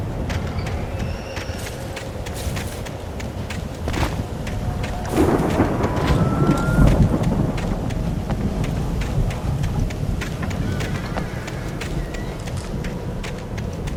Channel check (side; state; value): both; identical; correlation 1.00